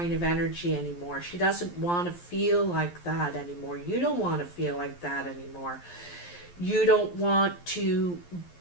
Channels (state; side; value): late; right; 11 ms